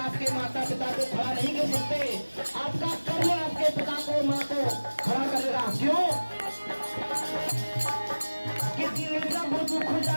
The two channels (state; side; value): inverted; both; correlation -1.00